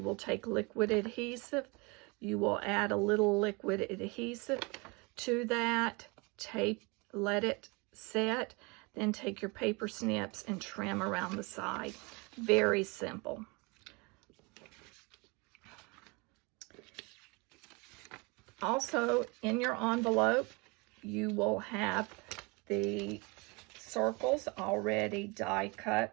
take liquid adhesive. You will add a little liquid adhesive to that, tape, let it set, then take your paper snips and trim around the side. Very simple. Also, in your envelope, you will have the circles already die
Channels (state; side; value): quieter; left; 28.1 dB